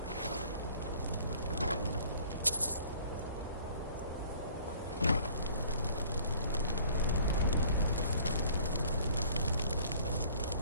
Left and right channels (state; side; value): inverted; both; correlation -0.53